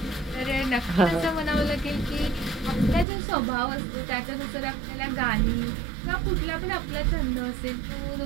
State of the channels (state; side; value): drops out; left; at 3.1 s